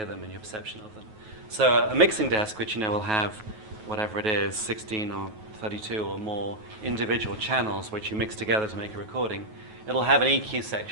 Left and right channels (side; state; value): left; late; 9.3 ms